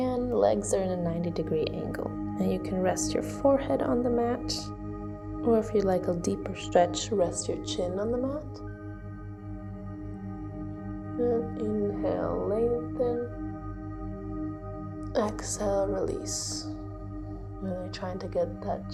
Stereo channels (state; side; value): identical; both; correlation 1.00